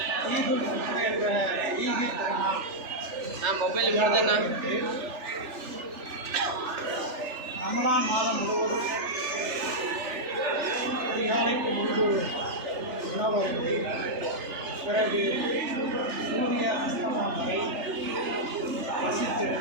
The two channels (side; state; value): left; late; 3.4 ms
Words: ரமலான் மாதம் முழுவதும் அதிகாலைக்கு முன்பு உணவருந்தி பிறகு சூரிய அஸ்தமனம் வரை